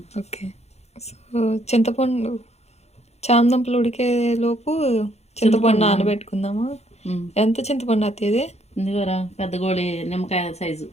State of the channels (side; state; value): right; late; 0.31 ms